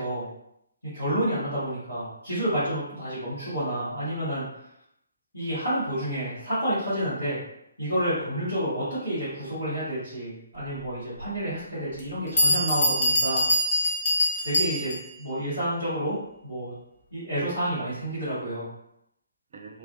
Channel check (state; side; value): inverted; both; correlation -0.66